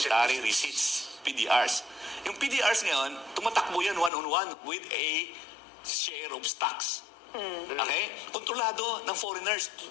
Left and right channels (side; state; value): right; drops out; at 4.1 s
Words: Receipts, PDRs. Yung PDRs ngayon, tumatakbo yan one-on-one with a share of stocks. Okay? Kontrolado ng foreigners